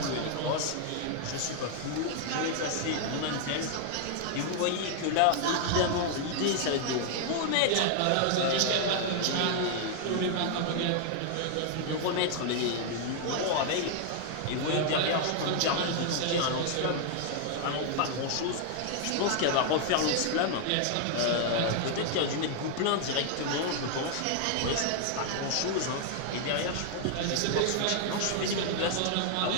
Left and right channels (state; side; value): different; both; correlation 0.00